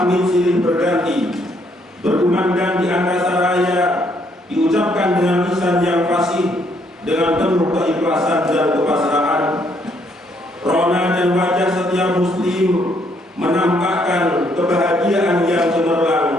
silih berganti, berkumandang di angkasa raya, diucapkan dengan lisan yang fasih, dengan penuh keikhlasan dan kepasrahan. Rona dan wajah setiap muslim menampakkan kebahagiaan yang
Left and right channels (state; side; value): normal; both; correlation 0.70